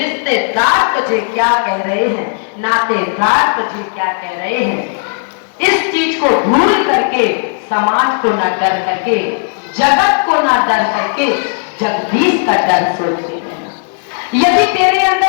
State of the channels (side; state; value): right; silent; digital silence